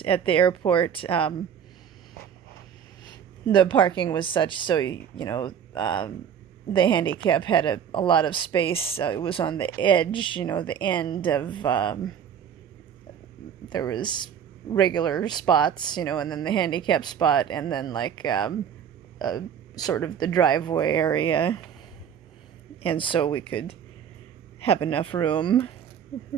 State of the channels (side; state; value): left; quieter; 8.4 dB